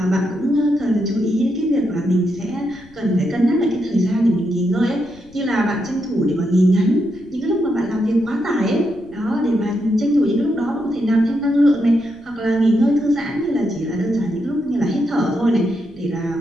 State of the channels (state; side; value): noise; left; rumble, 26 dB below the sound